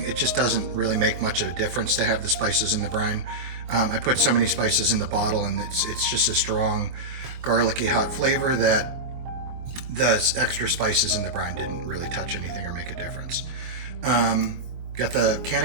it just doesn't really make much of a difference to have the spices in the brine. I put so many spices in the bottle, and it's just a strong, garlicky, hot flavor that the extra spices in the brine didn't really touch anything or make a difference. Got the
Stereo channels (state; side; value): late; left; 24 ms